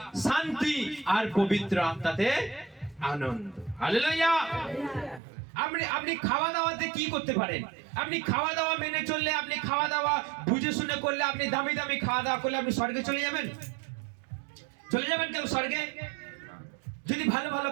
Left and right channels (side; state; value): left; drops out; at 5.2 s